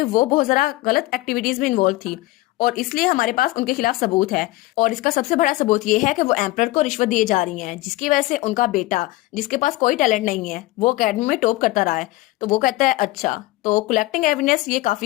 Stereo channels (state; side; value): quieter; right; 19.0 dB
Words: वो बहुत ज्यादा गलत एक्टिविटीज में इन्वॉल्व थी, और इसलिए हमारे पास उनके खिलाफ सबूत है। और इसका सबसे बड़ा सबूत ये है कि वो एम्परर को रिश्वत दिए जा रही हैं, जिसकी वजह से उनका बेटा जिसके पास कोई टैलेंट नहीं है वो अकेडमी में टॉप करता रहा है। तो वो कहता है अच्छा तो कलेक्टिंग एविडेंस ये